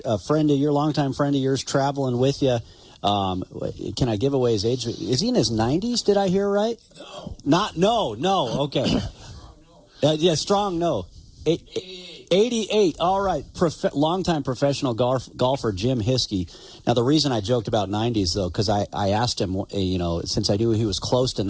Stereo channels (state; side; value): identical; both; correlation 1.00